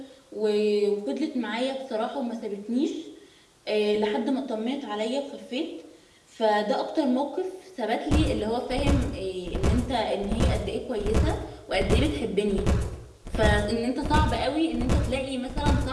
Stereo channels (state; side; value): identical; both; correlation 1.00